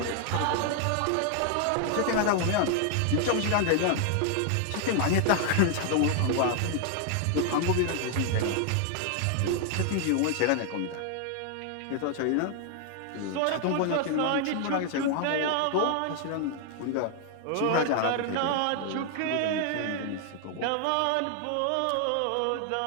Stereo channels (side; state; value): both; different; correlation 0.00